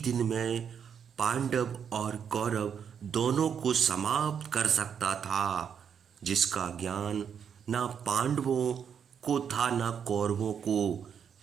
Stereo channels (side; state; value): left; quieter; 7.6 dB